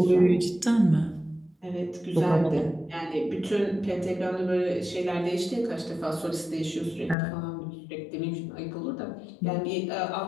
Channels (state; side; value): drops out; right; at 7.2 s